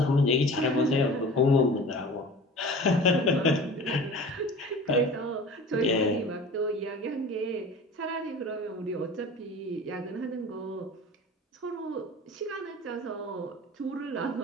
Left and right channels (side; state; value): both; normal; correlation 0.39